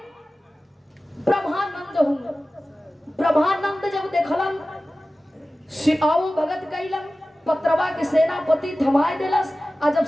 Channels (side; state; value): both; normal; correlation 0.96